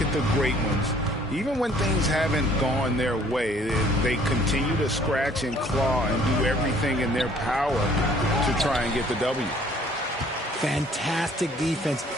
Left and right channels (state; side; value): normal; both; correlation 0.57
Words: at the great ones, even when things haven't gone their way, they continue to scratch and claw and do everything in their power to try and get the W. Fantastic defense,